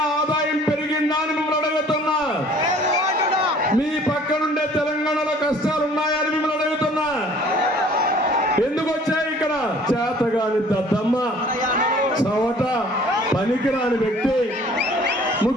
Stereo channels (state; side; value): normal; both; correlation 0.53